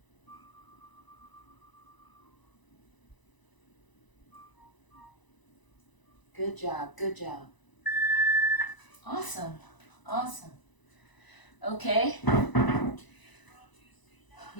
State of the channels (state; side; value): late; right; 1.0 ms